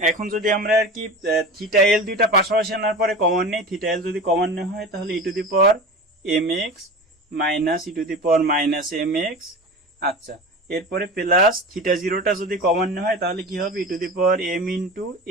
এখন যদি আমরা আর কি থিটা এল দুইটা পাশাপাশি আনার পরে কমন নেই, থিটা এল যদি কমন নেওয়া হয় তাহলে e to the power m x minus E to the power minus m x. আচ্ছা, এরপরে প্লাস থিটা জিরোটা যদি কমন হয় তাহলে কি হবে e to the power m into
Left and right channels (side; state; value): both; normal; correlation 0.31